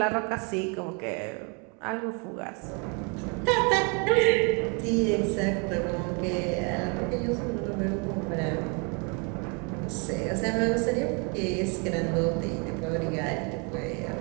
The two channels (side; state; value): left; quieter; 34.4 dB